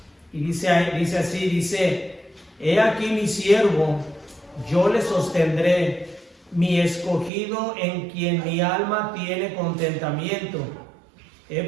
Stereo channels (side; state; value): left; drops out; at 7.3 s